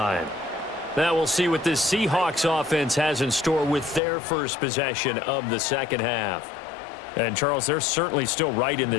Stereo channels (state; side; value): drops out; right; at 4.0 s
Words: Now we'll see what this Seahawks offense has in store with their first possession of the 2nd half. And, Charles, they're certainly still right in